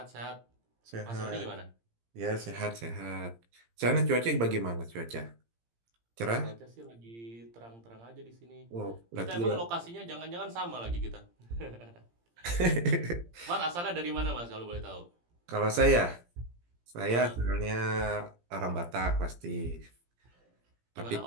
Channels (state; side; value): late; left; 17 ms